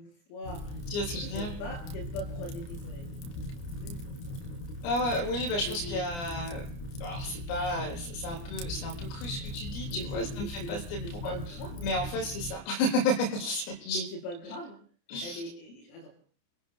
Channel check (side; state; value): right; late; 29 ms